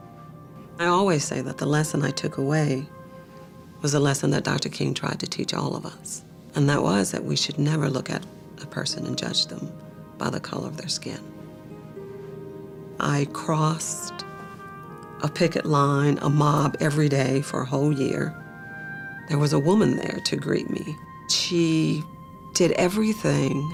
I always say that the lesson I took away was a lesson that Dr. King tried to teach all of us. And that was that we should never look at a person and judge them by the color of their skin. I crossed a picket line, a mob every day for a whole year. There was a woman there to greet me. She did everything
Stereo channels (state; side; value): identical; both; correlation 1.00